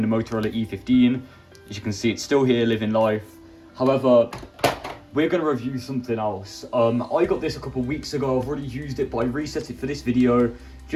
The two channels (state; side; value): identical; both; correlation 1.00